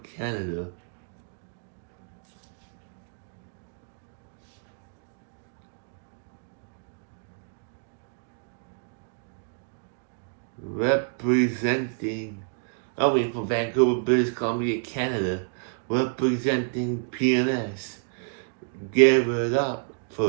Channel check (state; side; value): silent; left; 59 dB below the other